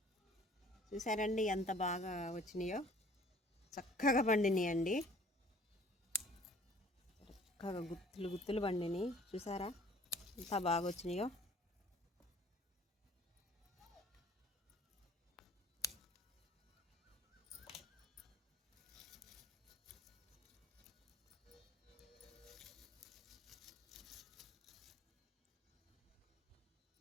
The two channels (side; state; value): both; normal; correlation 0.53